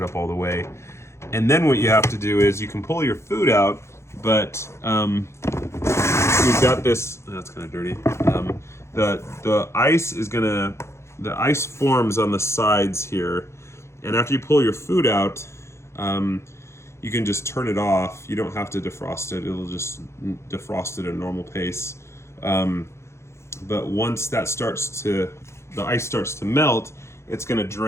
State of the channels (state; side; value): late; right; 0.13 ms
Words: it up all the way. And then what you have to do is you can pull your food out, but we've got this, that's kind of dirty. The ice forms on the sides here, and after you pull your food out, you can just turn it off. You don't have to defrost it. It'll just defrost it at a normal pace. But once that the ice starts to melt, it's going to